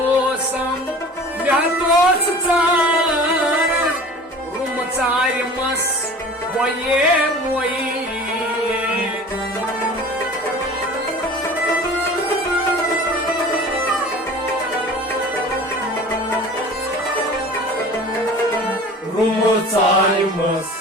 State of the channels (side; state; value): both; normal; correlation 0.41